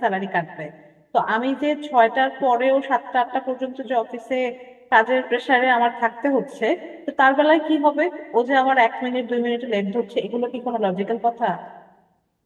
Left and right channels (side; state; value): both; identical; correlation 1.00